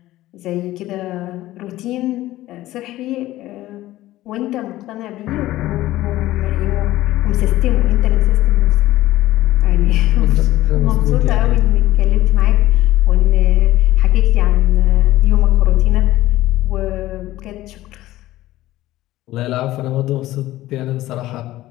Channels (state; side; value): quieter; right; 15.9 dB